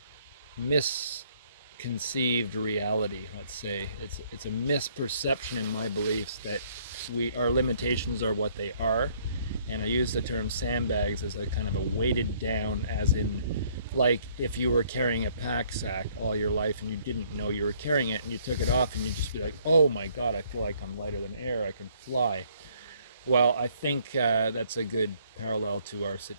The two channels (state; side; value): inverted; both; correlation -0.63